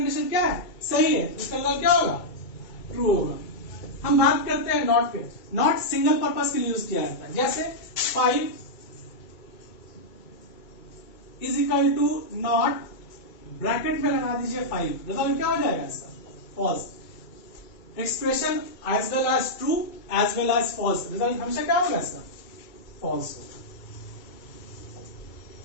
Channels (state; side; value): late; right; 2.3 ms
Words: क्या है? सही है, इसका रिजल्ट क्या होगा? ट्रू होगा। हम बात करते हैं नॉट पे। नॉट सिंगल पर्पज के लिए यूज किया जाता है। जैसे 5 is equal to not, bracket में लगा दीजिए 5, रिजल्ट क्या हो जाएगा इसका? False. Expression as well as true as well as false, result हमेशा क्या होगा इसका? फॉल्स होगा।